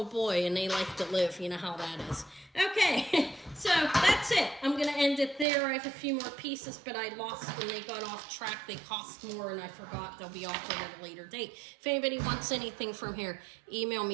boy, and they like to live. You know how that is. Okay, so that's it. I'm going to end it there. I have a few more pieces, but I lost when they got off track. They cost more, and I forgot they'll be offered at a later date. If anybody wants anything from here, email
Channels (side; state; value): left; drops out; at 5.5 s